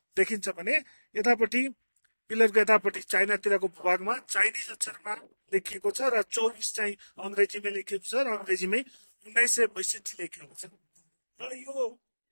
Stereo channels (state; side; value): inverted; both; correlation -1.00